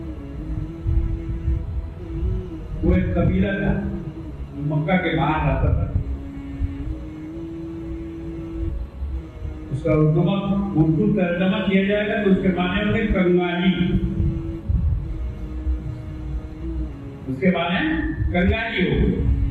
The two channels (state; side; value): identical; both; correlation 1.00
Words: वो एक कबीला था, मक्का के बाहर रहता था। उसका उर्दू तर्जमा किया जाएगा तो उसके माने होंगे कंगाली। उसके माने कंगाली हो।